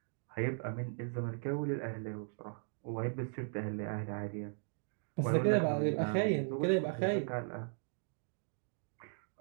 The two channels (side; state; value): left; silent; 53 dB below the other